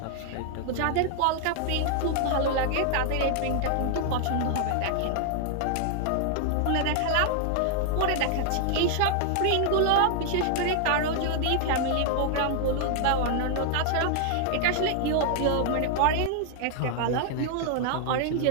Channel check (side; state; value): both; different; correlation -0.01